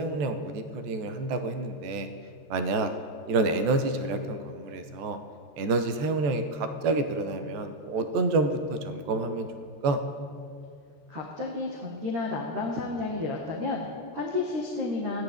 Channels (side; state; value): left; late; 14 ms